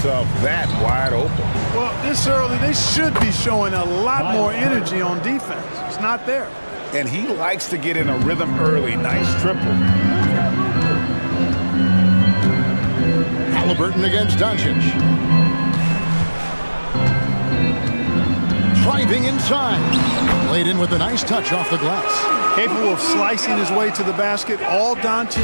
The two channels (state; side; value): inverted; both; correlation -1.00